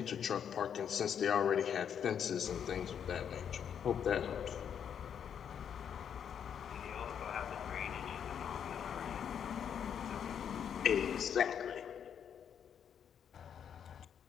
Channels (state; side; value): quieter; right; 8.2 dB